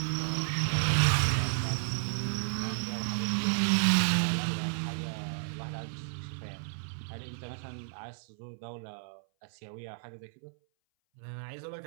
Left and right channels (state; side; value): silent; left; 56 dB below the other